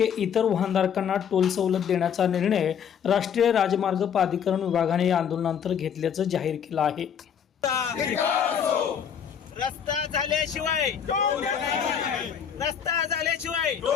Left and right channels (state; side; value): quieter; right; 8.0 dB